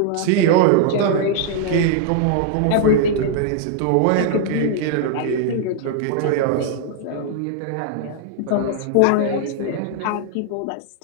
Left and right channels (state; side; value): different; both; correlation 0.00